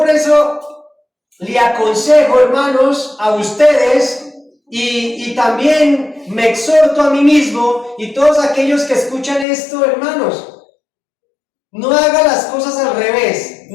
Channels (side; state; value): right; drops out; at 9.5 s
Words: eso le aconsejo, hermanos, a ustedes, y también me exhorto a mí mismo, y todos aquellos que escuchan esto, hermanos, no haga las cosas al revés,